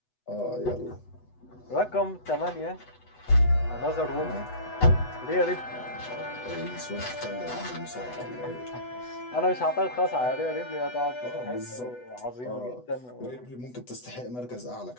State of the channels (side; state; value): right; late; 8.1 ms